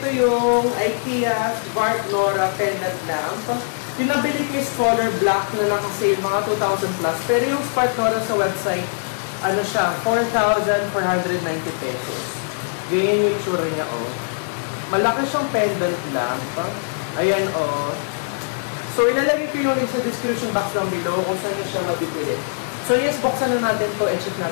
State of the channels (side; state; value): right; silent; 60 dB below the other